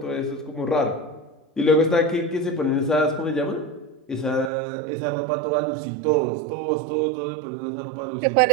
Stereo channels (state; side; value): drops out; left; at 4.5 s